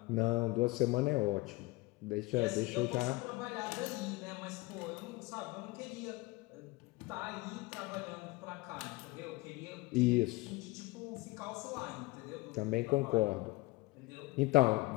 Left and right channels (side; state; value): right; quieter; 21.7 dB